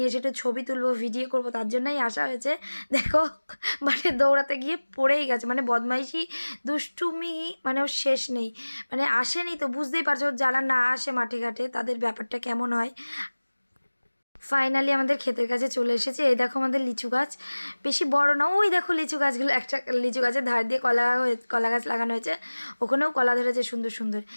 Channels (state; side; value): inverted; both; correlation -1.00